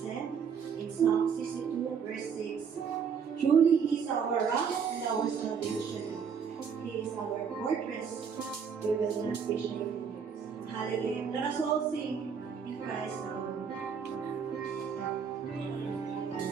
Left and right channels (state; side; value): quieter; left; 6.6 dB